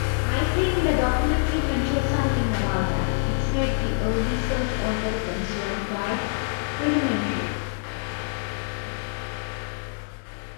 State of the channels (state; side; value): silent; right; digital silence